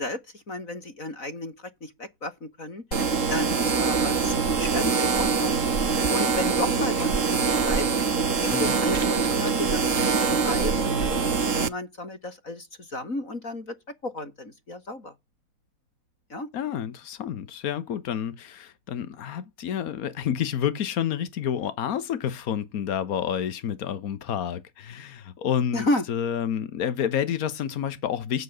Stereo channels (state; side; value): late; right; 3.8 ms